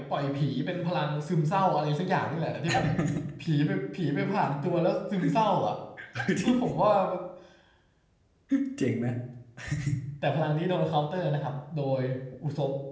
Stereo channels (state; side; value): identical; both; correlation 1.00